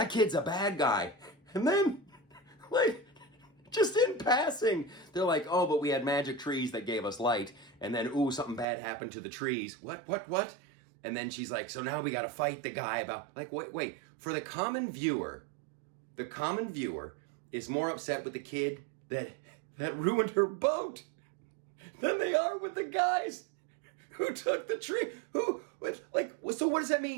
kid's a bad guy. And then, just in passing, they're like, oh, but we had magic trees that gave us light. And then, ooh, something bad happened to the trees. What? And then she's like, so now we got to fight the guy about, wait. For the common viewer is more upset with the kid that ruined her boat than they are with the guys who took the tree. So what does that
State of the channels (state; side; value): drops out; left; at 8.7 s